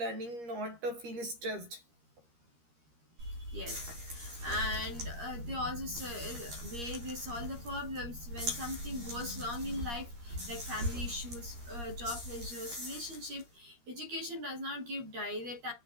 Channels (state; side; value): late; left; 13 ms